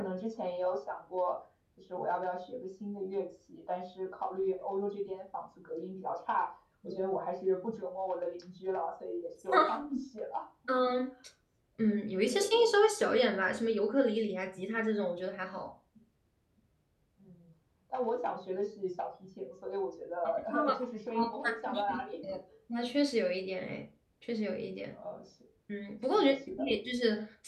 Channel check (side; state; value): both; identical; correlation 1.00